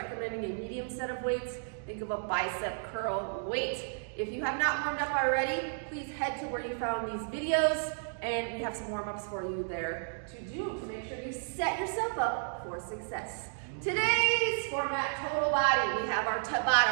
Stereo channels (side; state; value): left; silent; digital silence